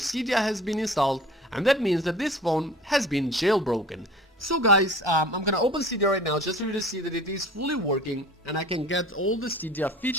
has been installed, and that means that this phone has been jailbroken. So guys, I'm gonna open Cydia right now just for you to see that it is fully working and I can get all the Cydia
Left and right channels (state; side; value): normal; both; correlation 0.43